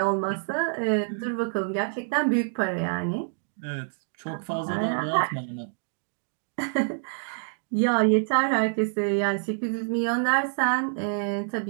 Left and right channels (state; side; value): silent; left; 60 dB below the other